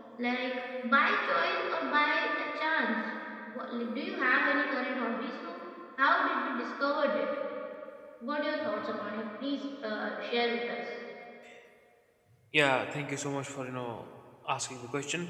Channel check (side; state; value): both; identical; correlation 1.00